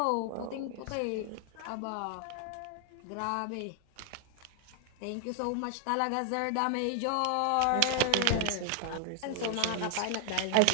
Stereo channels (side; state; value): both; different; correlation 0.00